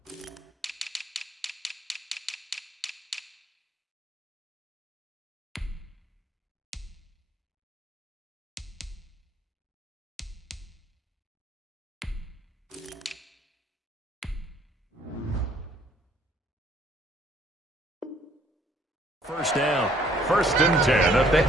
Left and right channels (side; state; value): both; normal; correlation 0.62